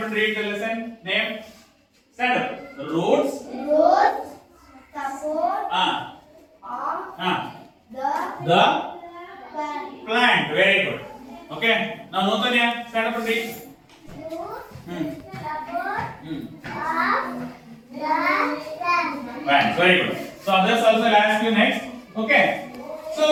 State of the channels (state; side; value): identical; both; correlation 1.00